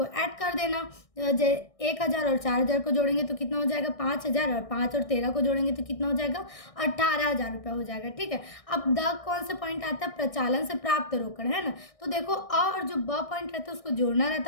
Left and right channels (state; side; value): late; right; 1.6 ms